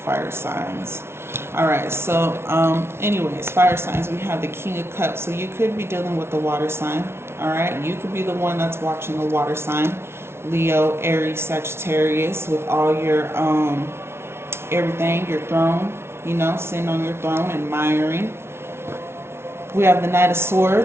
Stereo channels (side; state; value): left; late; 0.12 ms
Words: signs. All right, so anyways, fire signs, we have the King of Cups. So you could be dealing with the water sign. All right, you could be the one that's watching the water sign. Leo, Aries, Sagittarius, with all your everything, your throne, you know, sitting on your throne, admiring. We have the Knight of